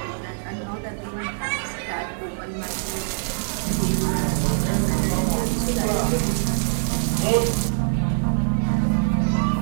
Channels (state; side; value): silent; left; digital silence